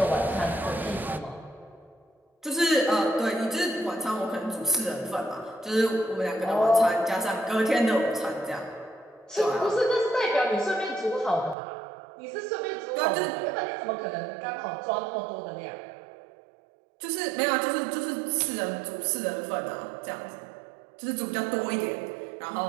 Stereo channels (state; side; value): drops out; left; at 11.6 s